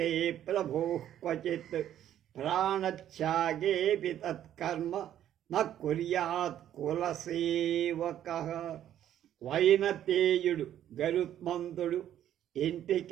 ప్రభోః క్వచిత్. ప్రాణత్యాగేపి తత్కర్మ న కుర్యాత్ కులసేవకః. వైనతేయుడు గరుత్మంతుడు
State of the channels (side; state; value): left; quieter; 11.1 dB